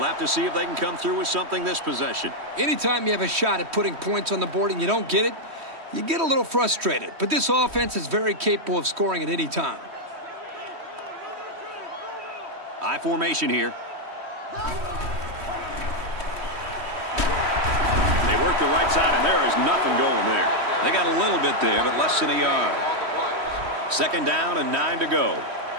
have to see if they can come through with something this possession. Anytime you have a shot at putting points on the board and you don't get it, you get a little frustrated. But this offense is very capable of scoring at any time. I formation here. They work the right side, and there is nothing going there. They got a little bit there, but less than a yard. 2nd down and 9 to go.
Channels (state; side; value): late; left; 3.1 ms